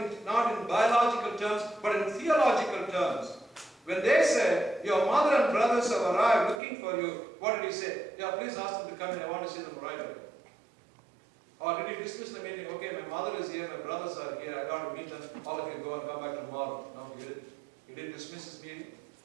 not in biological terms, but in theological terms. When they said, your mother and brothers have arrived looking for you, what did he say? Yeah, please ask them to come in, I want to see them right away. Or did he dismiss the meeting? Okay, my mother is here, my brothers are here, I got to meet them, all of you go and come back tomorrow. No, he didn't. He didn't dismiss his meeting.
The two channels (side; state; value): left; drops out; at 6.6 s